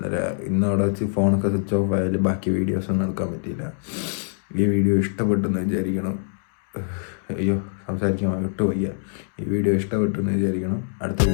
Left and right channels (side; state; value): right; silent; 63 dB below the other